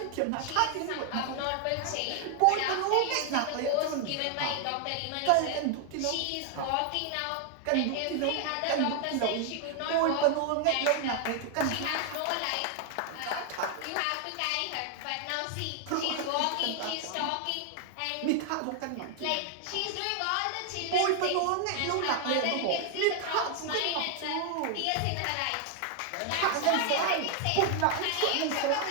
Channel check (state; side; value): different; both; correlation 0.00